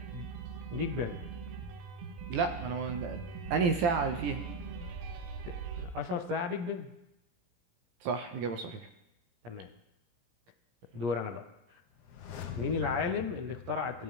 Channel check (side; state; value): left; late; 17 ms